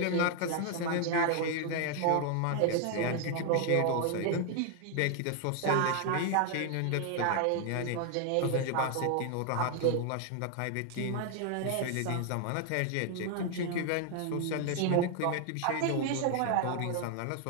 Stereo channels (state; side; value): different; both; correlation 0.00